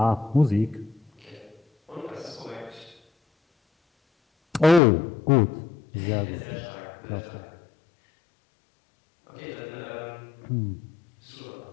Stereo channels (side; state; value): right; drops out; at 4.8 s